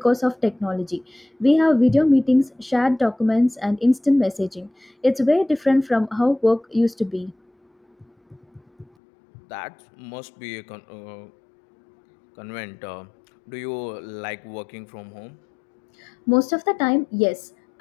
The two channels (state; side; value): drops out; right; at 8.9 s